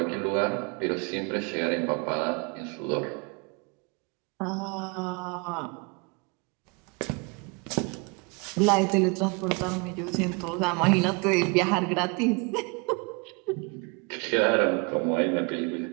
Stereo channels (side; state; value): left; quieter; 31.3 dB